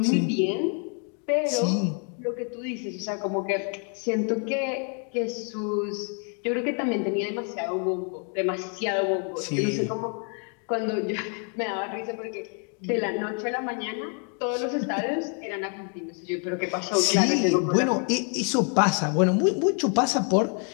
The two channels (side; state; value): right; quieter; 39.9 dB